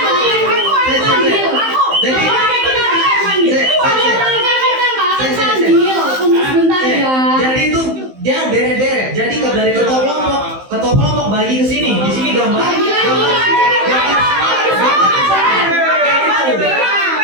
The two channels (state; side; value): late; left; 15 ms